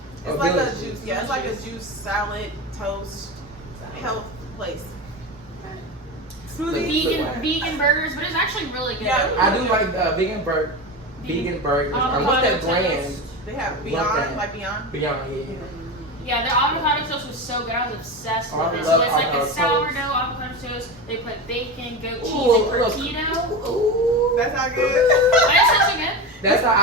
Oh, like Village a Juice. juice. Yeah, it's like a juice, salad, toast, health place. Smoothie. Vegan burgers, but it's actually really good. Yeah. I do like vegan burgers. What's that brand? They have Love Beyond, that. like Beyond. Beyond, yeah. Yeah, their avocado toast was so good. I was obsessed Oh, I with it. love So it's like avocado a toast. sourdough avocado toast. They put bacon, goat cheese, Ooh, and look. tortilla. Ooh. That's not good. That sounds so good. That's how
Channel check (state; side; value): normal; both; correlation 0.23